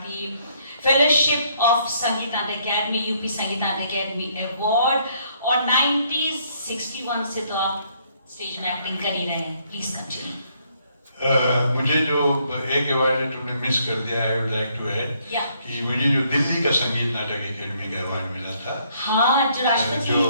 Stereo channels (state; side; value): inverted; both; correlation -0.69